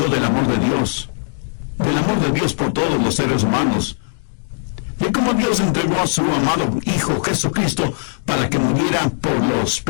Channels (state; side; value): silent; right; digital silence